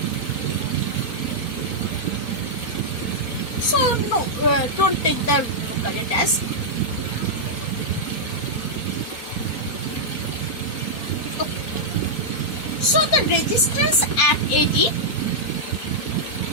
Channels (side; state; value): right; late; 4.3 ms